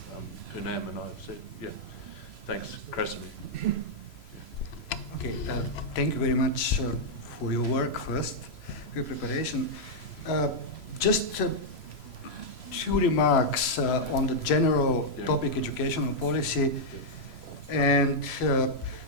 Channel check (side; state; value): right; late; 3.0 ms